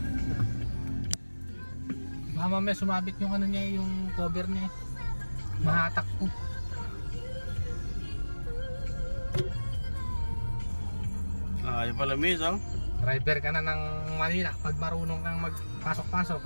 Mama may sumabit yung ano niya, yung cover niya. Mahatak ko. Yung pala miss oh. Driver ka na ng Manila pag marunong kang magpasok-pasok.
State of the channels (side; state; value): both; inverted; correlation -1.00